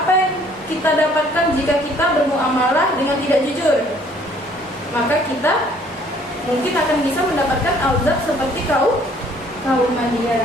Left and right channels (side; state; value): both; normal; correlation 0.59